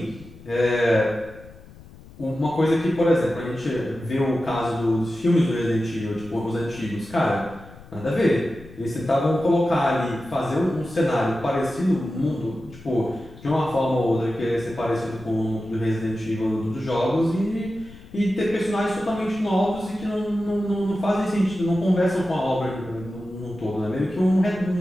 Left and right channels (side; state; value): left; noise; rumble, 20 dB below the sound